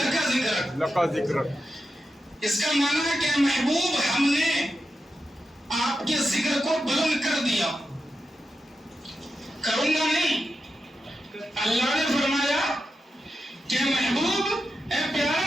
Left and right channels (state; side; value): normal; both; correlation 0.89